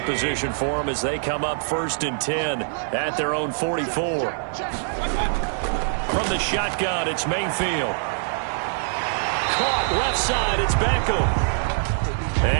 position for them as they come up 1st and 10 at their own 44. From the shotgun, it's Mayfield. Caught left side, it's Beckham.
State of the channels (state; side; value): silent; left; digital silence